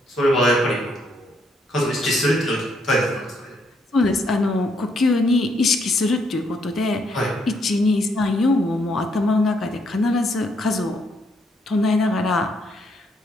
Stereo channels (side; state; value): both; normal; correlation 0.73